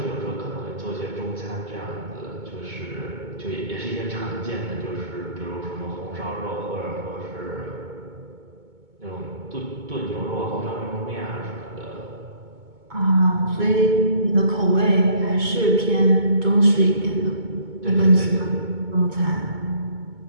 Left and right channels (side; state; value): left; late; 2.2 ms